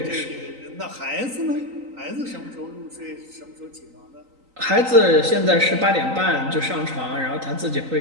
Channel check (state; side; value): late; left; 3.9 ms